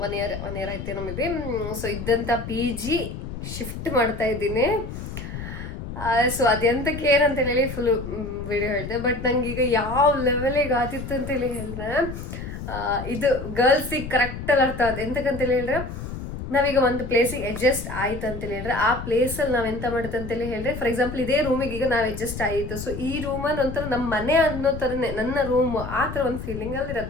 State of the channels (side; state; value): left; noise; rumble, 8 dB below the sound